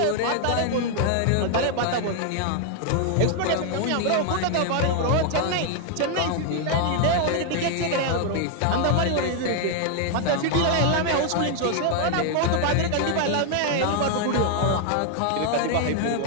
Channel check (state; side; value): different; both; correlation 0.00